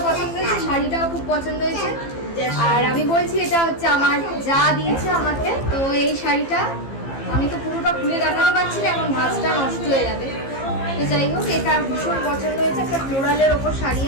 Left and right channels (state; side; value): late; right; 15 ms